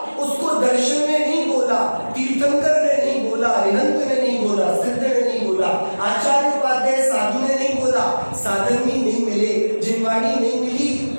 उसको दर्शन ने नहीं बोला, तीर्थंकर ने नहीं बोला, अरिहंत ने नहीं बोला, सिद्ध ने नहीं बोला, आचार्य उपाध्याय साधु ने नहीं बोला, साधर्मी नहीं मिले, जिनवाणी नहीं मिली,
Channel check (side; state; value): both; inverted; correlation -1.00